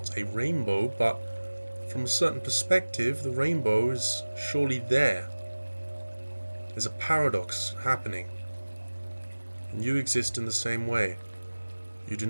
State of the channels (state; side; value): inverted; both; correlation -1.00